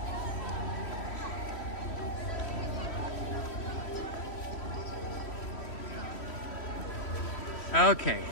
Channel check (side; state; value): right; late; 3.1 ms